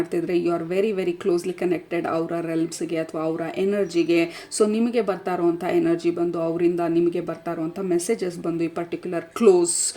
you are very very closely connected ಅವರ ರೆಲ್ಮ್ಸ್ಗೆ ಅಥವಾ ಅವರ ಎನರ್ಜಿಗೆ. ಸೊ ನಿಮಗೆ ಬರ್ತಾ ಇರುವಂಥ ಎನರ್ಜಿ ಬಂದು, ಅವರಿಂದ ನಿಮಗೆ ಬರ್ತಾ ಇರುವಂಥ ಮೆಸೇಜಸ್ ಬಂದು, ಈ ಪರ್ಟಿಕ್ಯುಲರ್ ಕ್ಲೋಸ್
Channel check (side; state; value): both; identical; correlation 1.00